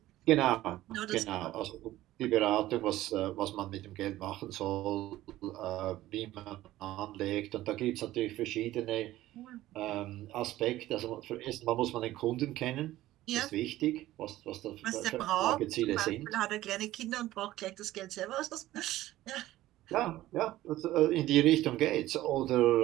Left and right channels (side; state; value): left; quieter; 15.5 dB